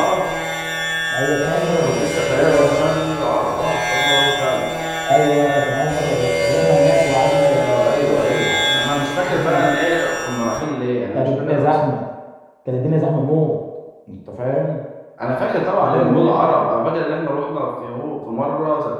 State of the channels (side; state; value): both; identical; correlation 1.00